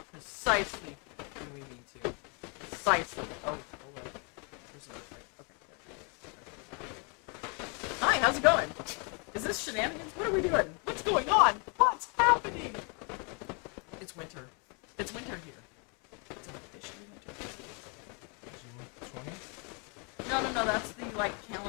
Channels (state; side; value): quieter; right; 35.4 dB